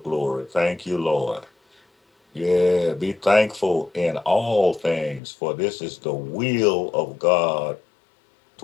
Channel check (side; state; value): right; drops out; at 5.2 s